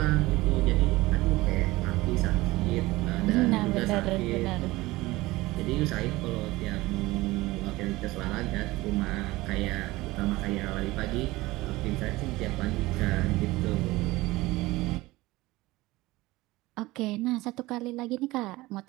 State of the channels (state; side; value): quieter; left; 19.7 dB